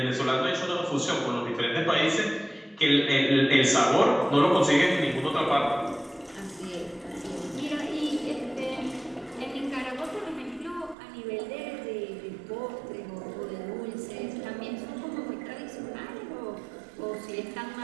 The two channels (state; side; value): drops out; left; at 11.0 s